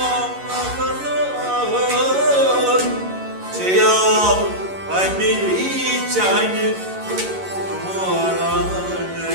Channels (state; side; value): late; left; 11 ms